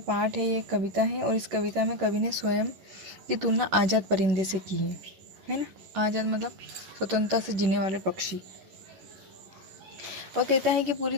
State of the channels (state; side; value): late; left; 11 ms